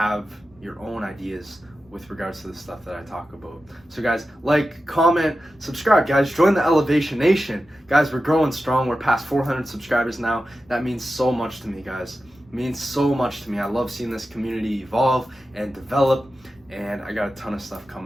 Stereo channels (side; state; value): both; normal; correlation 0.92